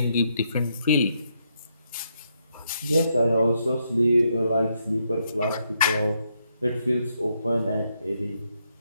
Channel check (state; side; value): inverted; both; correlation -0.78